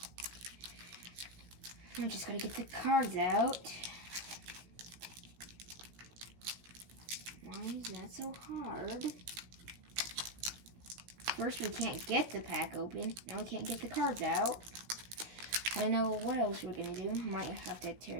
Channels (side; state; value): left; late; 17 ms